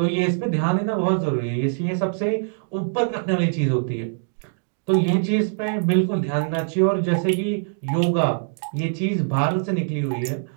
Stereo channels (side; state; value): left; silent; digital silence